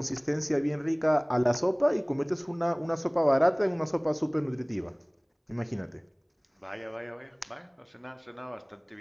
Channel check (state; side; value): identical; both; correlation 1.00